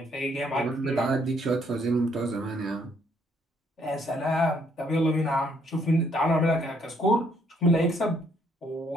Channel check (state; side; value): normal; both; correlation 0.68